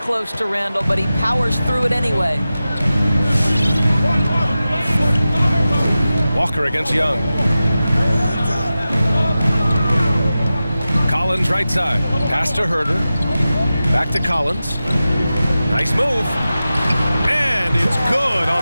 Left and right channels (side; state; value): both; inverted; correlation -0.94